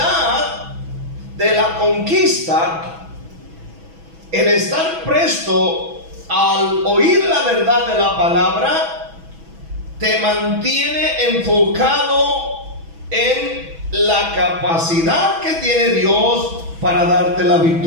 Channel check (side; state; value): left; late; 6.1 ms